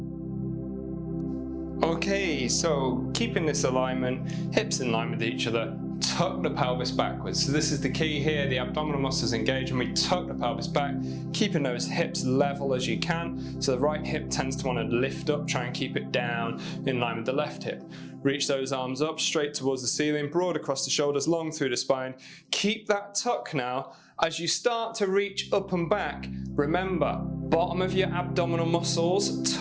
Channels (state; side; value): identical; both; correlation 1.00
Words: Okay, so keeping this alignment, hips in line with each other, tuck the pelvis backwards. So this is the key here, the abdominal muscles engage and we tuck the pelvis back, keeping those hips level as you can. So the right hip tends to want to lift up, try and keep it down in line with the left hip. Reach those arms up, straight towards the ceiling, broad across the shoulders, long through the spine. Keep that tuck now. As you start to reach up and back, remember, bottom of your abdominal muscles,